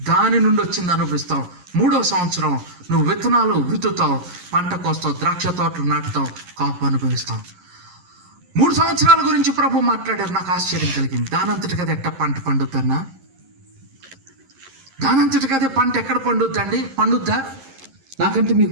దాని నుండి వచ్చింది అనుభవిస్తావు. మూడవ సంవత్సరం నువ్వు విత్తనాలు విత్తుతావు, పంట కోస్తావు, ద్రాక్ష తోటలు నాటుతావు, కాపు అనుభవిస్తావు. 3 సంవత్సరాల గురించి ప్రభు మాట్లాడారు. నాకు ఆశ్చర్యం కలిగింది. దానంతటికి అదే ఎట్ట పంట పండుద్దన్నా? దానంతటికి అదే పంట ఎక్కడ పండుద్దండి? పండుద్దా? నాకంటే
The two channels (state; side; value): late; left; 11 ms